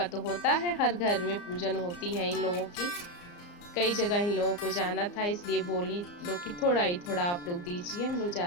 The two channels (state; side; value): late; right; 34 ms